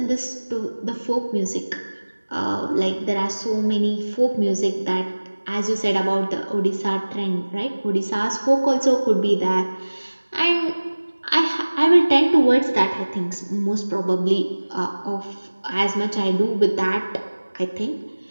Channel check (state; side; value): inverted; both; correlation -1.00